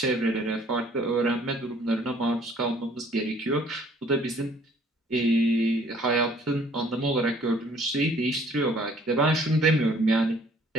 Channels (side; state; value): both; normal; correlation 0.58